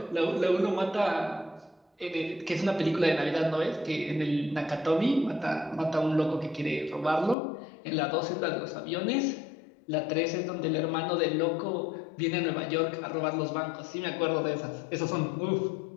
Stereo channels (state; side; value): drops out; right; at 7.4 s